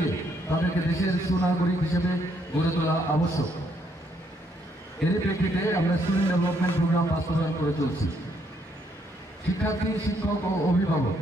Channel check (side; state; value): both; normal; correlation 0.72